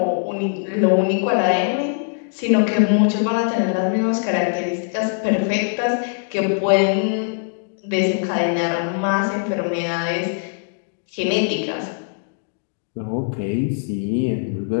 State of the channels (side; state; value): right; silent; digital silence